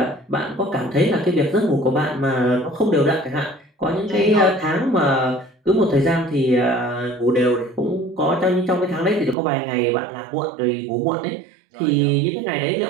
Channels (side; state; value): left; drops out; at 9.3 s